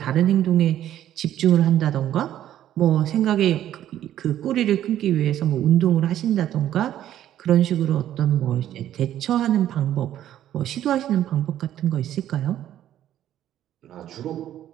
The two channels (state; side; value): quieter; left; 11.8 dB